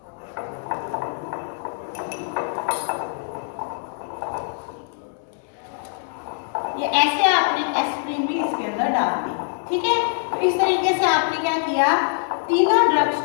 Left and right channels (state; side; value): silent; right; digital silence